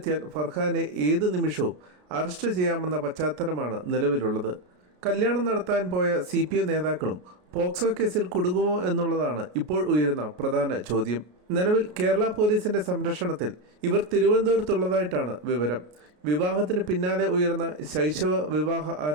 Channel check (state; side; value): late; left; 33 ms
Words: ഫർഹാനെ ഏത് നിമിഷവും അറസ്റ്റ് ചെയ്യാമെന്ന പശ്ചാത്തലമാണ് നിലവിലുള്ളത്. കല്യാണം നടത്താൻ പോയ CPM നേതാക്കളും പോക്സോ കേസിൽ കുടുങ്ങുമോ എന്നുള്ളതാണ് ഇപ്പോൾ ഉയരുന്ന പ്രധാന ചോദ്യം. നിലവിൽ കേരള പോലീസിന്റെ സംരക്ഷണത്തിൽ ഇവർ തിരുവനന്തപുരത്തുള്ളതായിട്ടാണ് വിവരം. വിവാഹത്തിന് പിന്നാലെ ഉയർന്ന ശൈശവ വിവാഹ